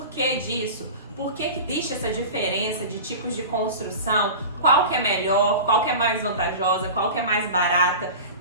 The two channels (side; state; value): both; inverted; correlation -0.33